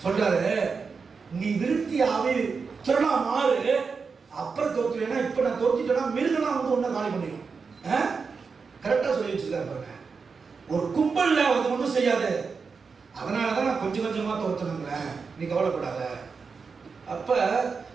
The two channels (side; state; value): left; quieter; 5.1 dB